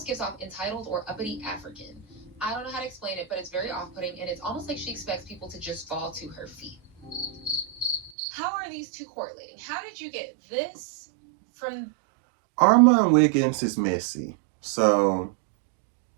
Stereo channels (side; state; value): left; drops out; at 8.1 s